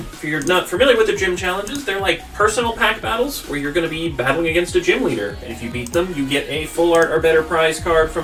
If you're not familiar with the gym challenges, they're like personal pack battles where you're going to be battling against a gym leader. And if you beat them, you get a full art or better prize card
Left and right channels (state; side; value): identical; both; correlation 1.00